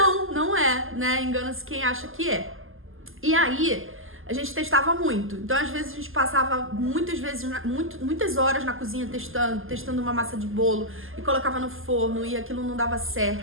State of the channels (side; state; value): left; late; 0.59 ms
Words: é, né? Engana-se quem acha que é. E aí, a gente testava muito. Então, às vezes, a gente passava muitas horas na cozinha testando uma massa de bolo e colocava no forno e aquilo não dava